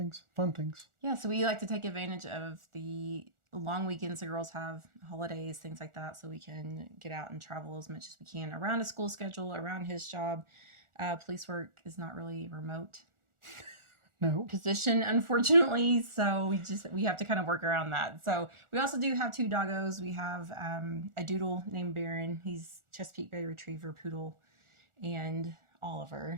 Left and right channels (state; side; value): late; left; 1.4 ms